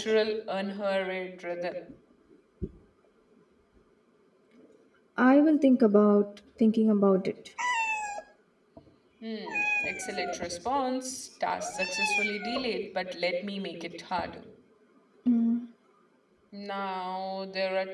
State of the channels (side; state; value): both; identical; correlation 1.00